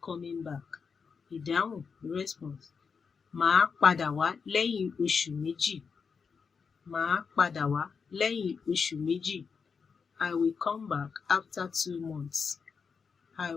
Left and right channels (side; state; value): right; quieter; 5.7 dB